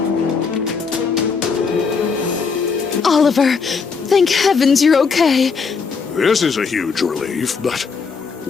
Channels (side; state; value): right; quieter; 5.3 dB